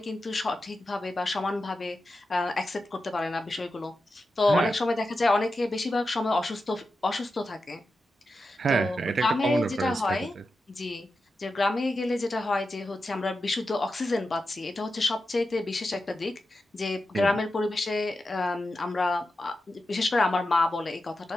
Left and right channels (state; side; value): normal; both; correlation 0.90